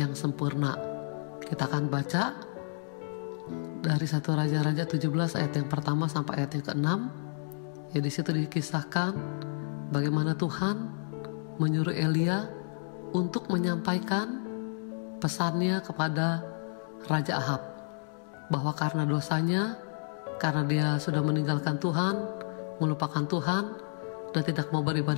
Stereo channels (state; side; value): silent; right; digital silence